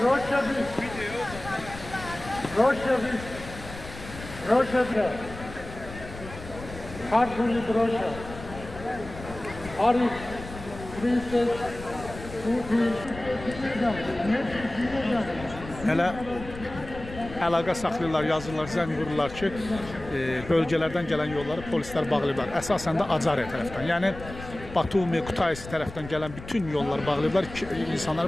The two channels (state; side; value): noise; left; rumble, 13 dB below the sound